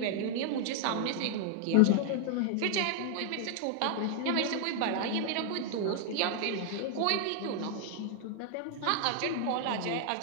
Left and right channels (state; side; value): different; both; correlation 0.00